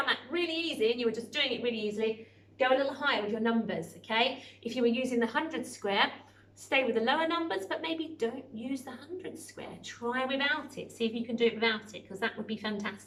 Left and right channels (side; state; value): both; identical; correlation 1.00